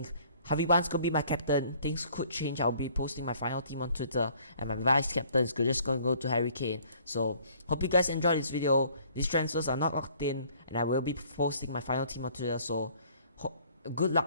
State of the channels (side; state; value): both; inverted; correlation -0.58